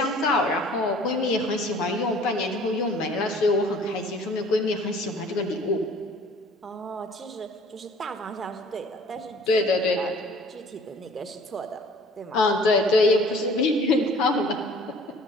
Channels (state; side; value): normal; both; correlation 0.51